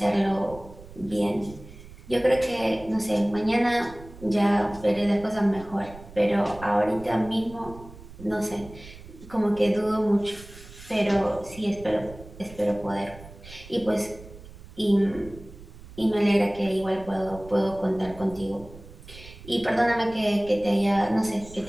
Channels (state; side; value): noise; right; rumble, 18 dB below the sound